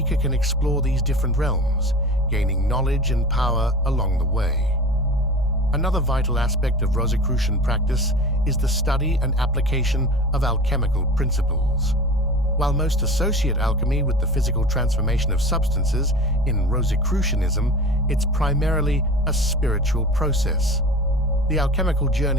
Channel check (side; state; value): both; normal; correlation 0.36